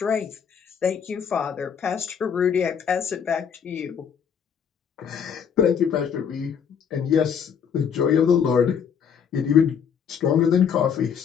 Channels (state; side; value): quieter; right; 7.4 dB